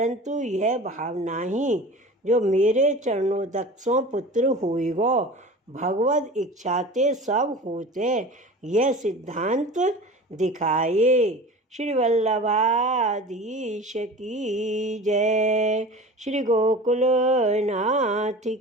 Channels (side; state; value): both; normal; correlation 0.37